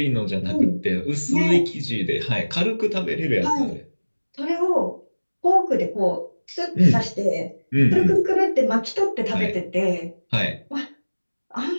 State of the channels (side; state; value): both; inverted; correlation -1.00